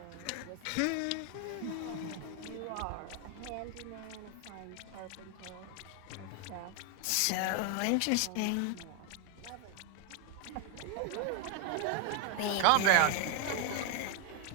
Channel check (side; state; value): both; different; correlation 0.01